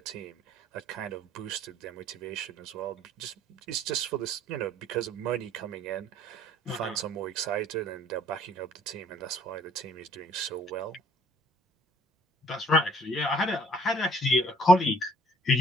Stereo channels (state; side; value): normal; both; correlation 0.58